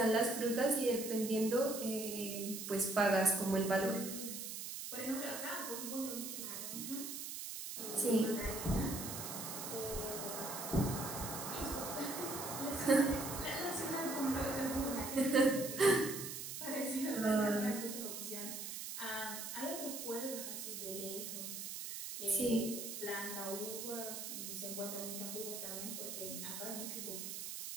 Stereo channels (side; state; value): right; noise; hiss, 6 dB below the sound